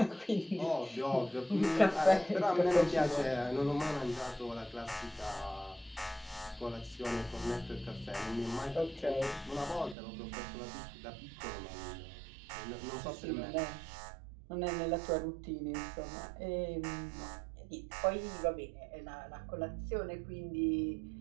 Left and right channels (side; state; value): left; drops out; at 10.0 s